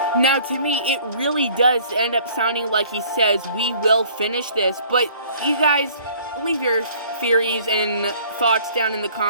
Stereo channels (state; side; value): inverted; both; correlation -0.54